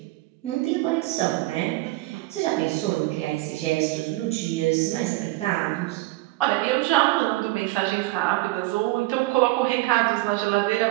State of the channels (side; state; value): left; quieter; 20.1 dB